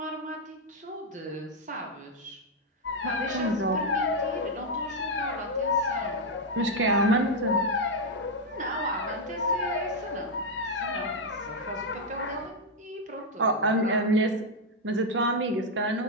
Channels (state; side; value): normal; both; correlation 0.01